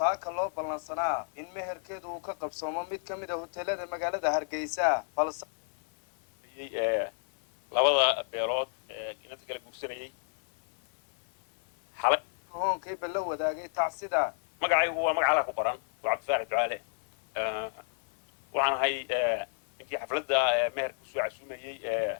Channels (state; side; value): silent; right; 57 dB below the other